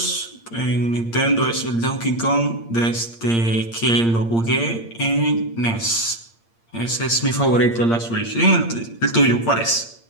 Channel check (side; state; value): right; late; 8.7 ms